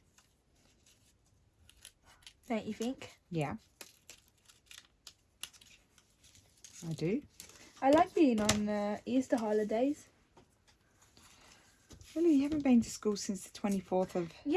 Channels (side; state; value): both; identical; correlation 1.00